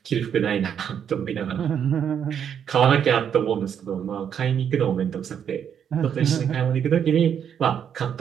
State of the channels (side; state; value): left; quieter; 8.4 dB